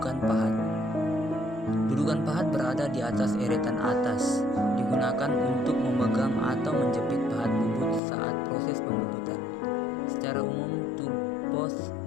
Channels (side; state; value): right; drops out; at 8.0 s